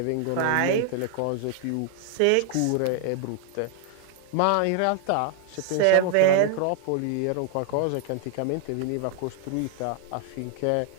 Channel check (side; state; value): both; different; correlation 0.00